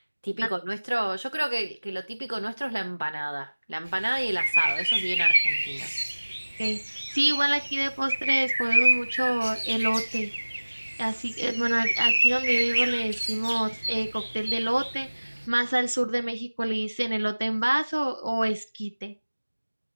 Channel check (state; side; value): inverted; both; correlation -1.00